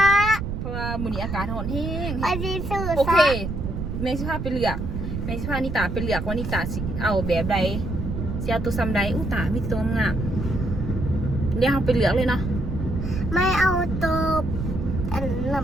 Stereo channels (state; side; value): noise; right; rumble, 4 dB below the sound